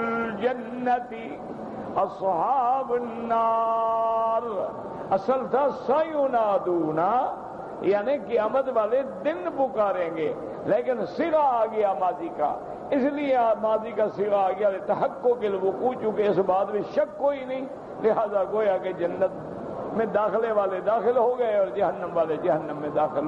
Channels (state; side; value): identical; both; correlation 1.00